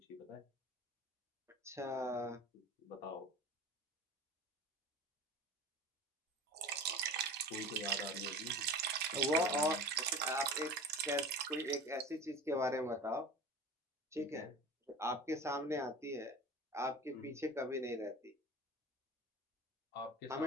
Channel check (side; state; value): both; normal; correlation 0.36